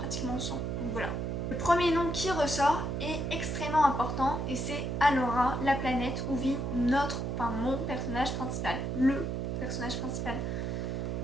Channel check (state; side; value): noise; right; hum, 2 dB below the sound